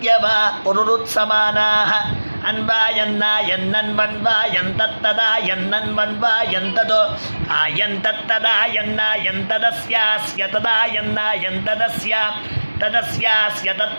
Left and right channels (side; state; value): both; inverted; correlation -1.00